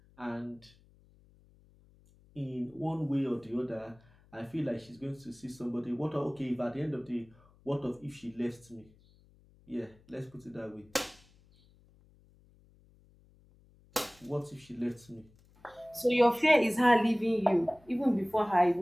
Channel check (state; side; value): noise; left; hum, 29 dB below the sound